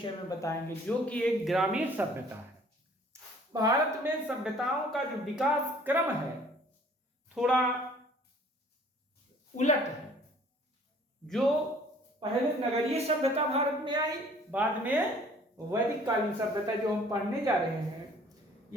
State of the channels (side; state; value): both; normal; correlation 0.55